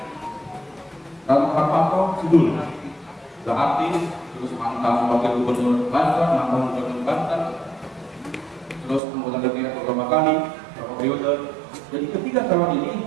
Rano Hartanto Sidul, sudah artis, terus mantan wakil gubernur Banten, mantan gubernur Banten, terus anggota DPR beberapa kali periode. Jadi ketika calon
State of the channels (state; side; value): drops out; left; at 9.0 s